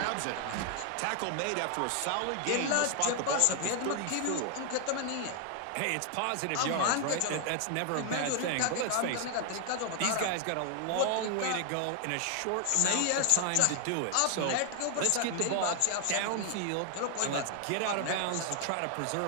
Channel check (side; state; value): both; different; correlation 0.00